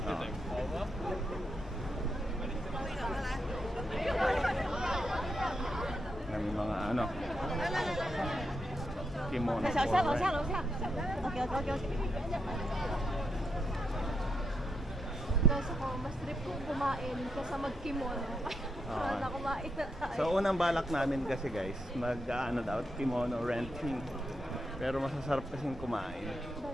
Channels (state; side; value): normal; both; correlation 0.81